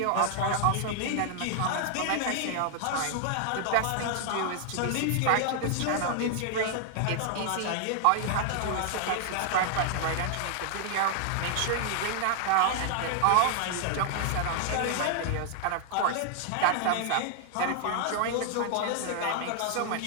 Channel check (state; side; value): different; both; correlation 0.00